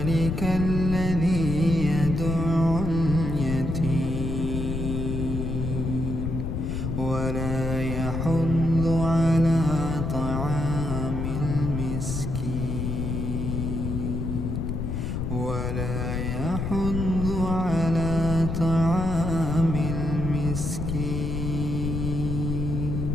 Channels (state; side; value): noise; left; rumble, 2 dB below the sound